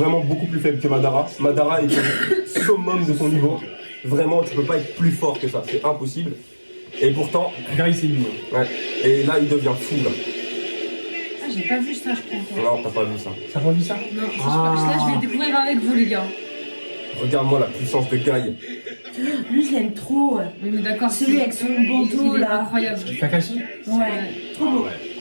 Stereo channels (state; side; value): inverted; both; correlation -1.00